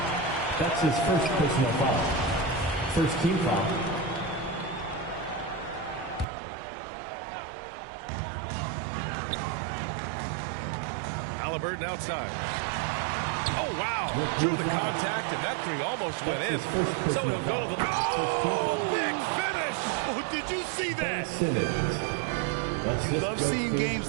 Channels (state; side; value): drops out; left; at 6.2 s